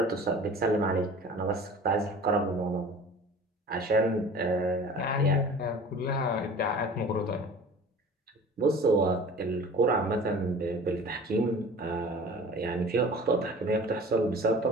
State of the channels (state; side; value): normal; both; correlation 0.42